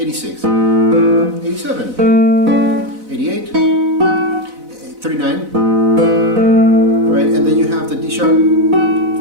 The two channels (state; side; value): late; left; 4.0 ms